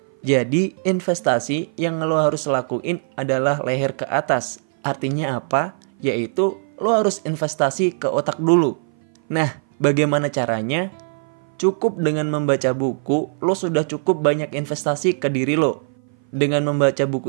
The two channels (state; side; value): silent; left; 57 dB below the other